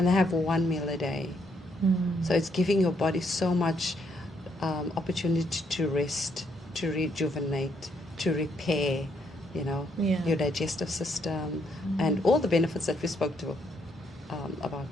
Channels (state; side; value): normal; both; correlation 0.74